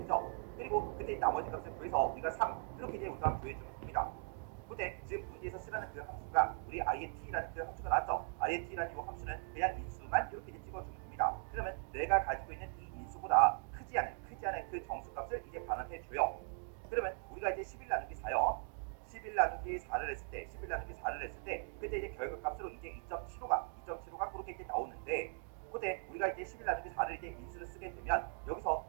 그리고 그때 나머지 값을 구해서 우리가 3 이렇게 이제 우리가 구해주면 됩니다. 근데 지금 문제에서 쓰라는 그 함수가 우리 int라는 그 함수가 나왔죠. int라는 이 함수는 그냥 인수만 이렇게 이제 찍어주면 됩니다. 그러면 내가 가지고 있는 이 인수보다 크지 않은 그 정수값을 이제 반환해 줘요. 그러면 우리가 이제 11 나누기 4요. 11 나누기 4를 했을 때, 11 나누기 4를 했을 때, 그때 이제 결과값으로 이제 2.75가 그렇게 이제 나오는데, 그때 우리가 이제 11 나누기 4를 이제 인수를 쓰게 되면 여기서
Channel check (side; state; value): left; silent; 51 dB below the other